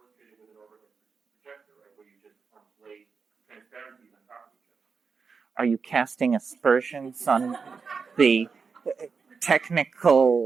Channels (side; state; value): left; quieter; 5.3 dB